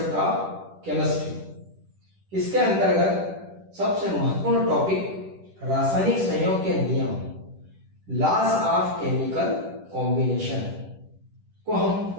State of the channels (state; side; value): late; left; 10 ms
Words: of chemistry, इसके अंतर्गत सबसे महत्वपूर्ण टॉपिक रासायनिक संयोग के नियम, लॉज ऑफ केमिकल कॉम्बिनेशन को हम